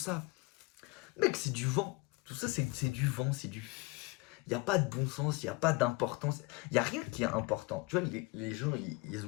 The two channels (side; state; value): right; quieter; 24.0 dB